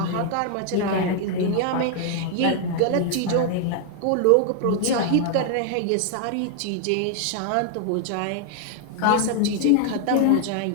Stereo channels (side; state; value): both; different; correlation 0.00